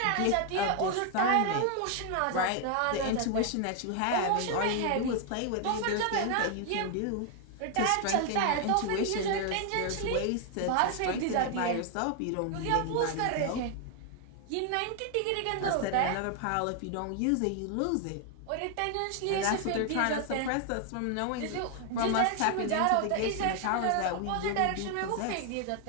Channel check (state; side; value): different; both; correlation 0.00